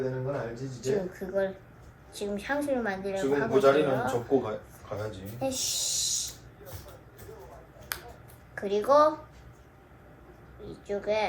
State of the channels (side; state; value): both; identical; correlation 1.00